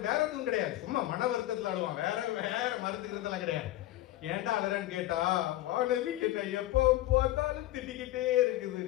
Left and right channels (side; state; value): right; quieter; 15.4 dB